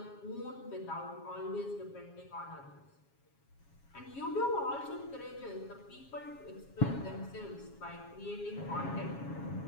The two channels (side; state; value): right; late; 7.3 ms